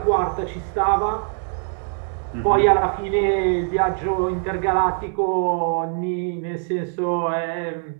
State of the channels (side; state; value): left; silent; 56 dB below the other